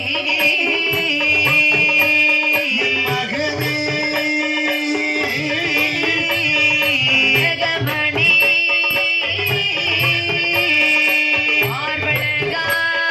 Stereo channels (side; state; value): both; identical; correlation 1.00